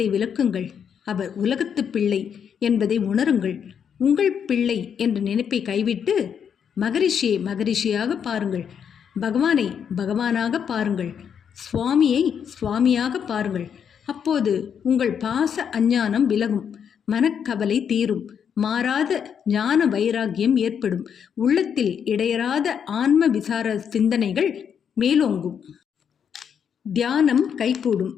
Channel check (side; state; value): right; quieter; 7.7 dB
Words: விலக்குங்கள். அவர் உலகத்து பிள்ளை என்பதை உணருங்கள். உங்கள் பிள்ளை என்ற நினைப்பை கைவிட்டு மகரிஷியை மகரிஷியாக பாருங்கள். பகவானை பகவானாக பாருங்கள். சுவாமியை சுவாமியாக பாருங்கள். அப்போது உங்கள் பாச அஞ்ஞானம் விலகும், மனக்கவலை தீரும், மாறாத ஞான வைராகியம் ஏற்படும், உள்ளத்தில் இடையறாத ஆன்ம விசார சிந்தனைகள் மேலோங்கும், தியானம் கைகூடும்,